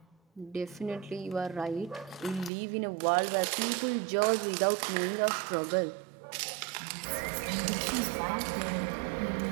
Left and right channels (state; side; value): drops out; left; at 2.5 s